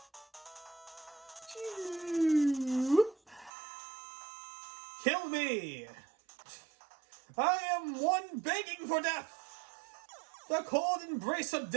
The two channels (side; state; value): left; drops out; at 3.5 s